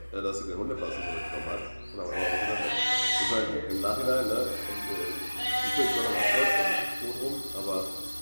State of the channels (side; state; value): both; inverted; correlation -1.00